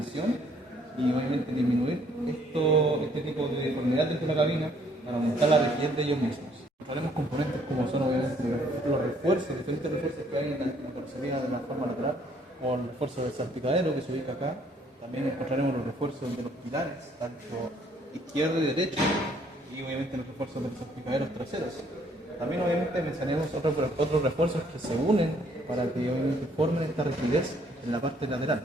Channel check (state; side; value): normal; both; correlation 0.64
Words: y obviamente disminuir este tipo de deformidad dentro de la cabina para aumentar la rigidez de ellos mismos. Encontraremos componentes como son obviamente los refuerzos, diferentes refuerzos que hay en la carrocería de la forma lateral, o el refuerzo del salpicadero que se ubica acá. También encontraremos los refuerzos de los pilares, tanto izquierdo y derecho, y obviamente los refuerzos de los salpicaderos traseros. También obviamente mencionamos otros refuerzos que se unen para que obviamente formen esta rigidez en la parte lateral,